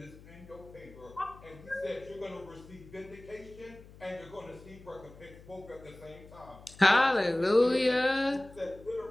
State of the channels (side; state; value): left; noise; hum, 20 dB below the sound